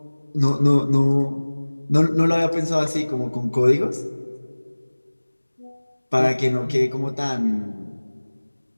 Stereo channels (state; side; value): inverted; both; correlation -1.00